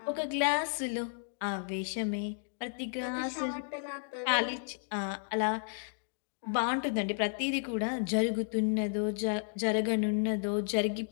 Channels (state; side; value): silent; right; digital silence